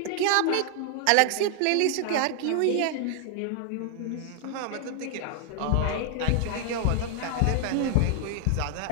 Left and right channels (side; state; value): both; different; correlation 0.00